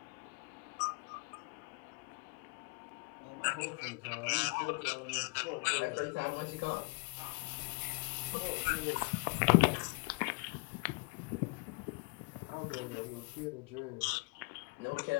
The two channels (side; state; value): right; quieter; 30.9 dB